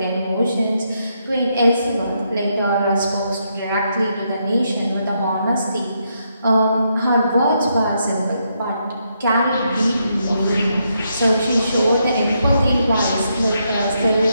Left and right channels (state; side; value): inverted; both; correlation -0.79